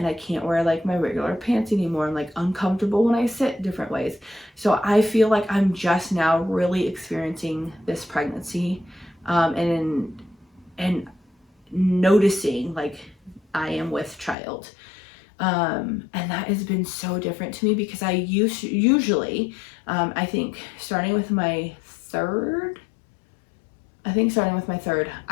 I can't wear like my regular pants anymore. I'm like uncomfortable when I sit different ways. So I feel like I'm just now really experiencing this pregnancy, and noticing like I am with child. And that has been so different to me, because I usually, I think starting with my third,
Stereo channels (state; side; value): drops out; right; at 14.4 s